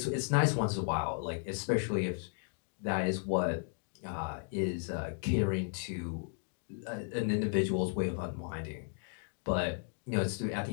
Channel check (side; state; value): right; silent; 55 dB below the other